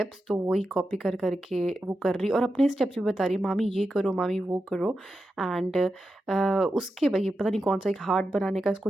तो वही कॉपी कर करके वो कर रही और अपने स्टेप्स भी बता रही है, मामी ये करो, मामी वो करो। एंड उसके भाई पता नहीं कौन सा एक हार्ट बनाने का इसको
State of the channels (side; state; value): both; normal; correlation 0.89